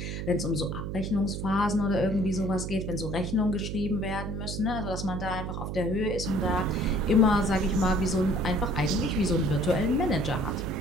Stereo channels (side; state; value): right; noise; hum, 5 dB below the sound